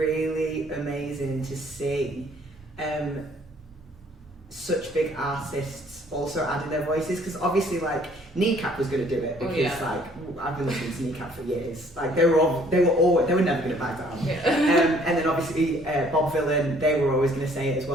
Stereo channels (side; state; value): both; normal; correlation 0.60